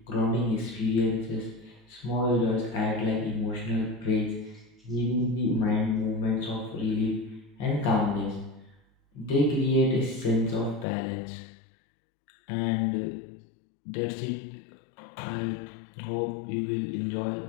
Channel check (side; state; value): right; drops out; at 10.9 s